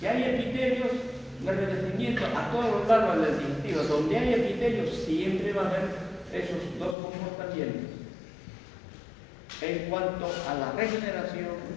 Que hay epitelios de revestimiento a todos los lados del digestivo. Donde hay epitelios, siempre va a haber esos dos comportamientos en cuanto a la regeneración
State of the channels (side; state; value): right; drops out; at 7.0 s